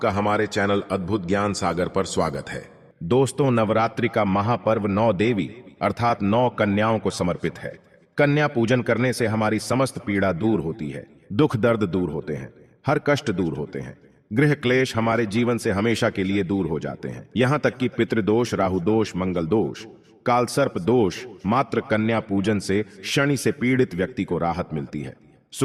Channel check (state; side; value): identical; both; correlation 1.00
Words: हमारे चैनल अद्भुत ज्ञान सागर पर स्वागत है। दोस्तों, नवरात्रि का महापर्व 9 देवी अर्थात 9 कन्याओं को समर्पित है। कन्या पूजन करने से हमारी समस्त पीड़ा दूर होती है, दुख दर्द दूर होते हैं, हर कष्ट दूर होते हैं, गृह क्लेश हमारे जीवन से हमेशा के लिए दूर हो जाते हैं। यहाँ तक कि पितृदोष, राहु दोष, मंगल दोष, कालसर्प दोष, मात्र कन्या पूजन से शनि से पीड़ित व्यक्ति को राहत मिलती है,